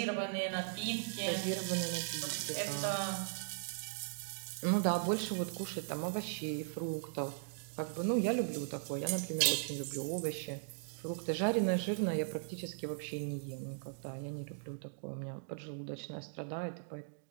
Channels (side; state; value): left; silent; digital silence